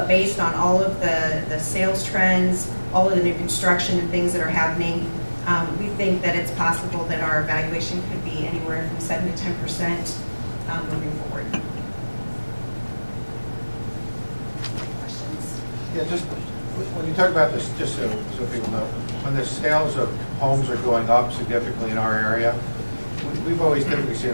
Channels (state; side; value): inverted; both; correlation -1.00